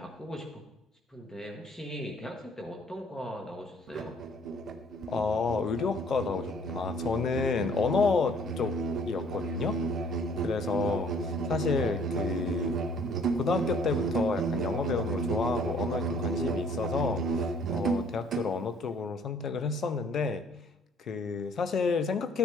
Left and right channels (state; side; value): normal; both; correlation 0.58